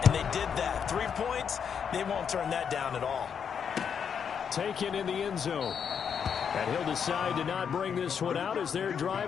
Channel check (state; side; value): quieter; right; 7.3 dB